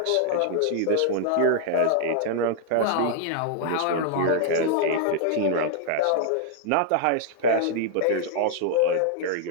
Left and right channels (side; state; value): both; different; correlation 0.00